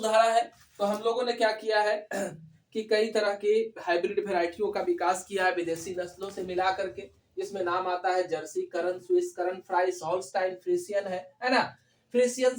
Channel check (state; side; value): identical; both; correlation 1.00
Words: है, तो हम लोगों ने क्या किया है कि कई तरह की हाइब्रिड वेराइटियों का विकास किया है विदेशी नस्लों से मिला करके। इसमें नाम आता है जर्सी, करन, स्विस, करन फ्राइस, हॉल्स्टाइन फ्रीसियन है ना। फ्रीसियन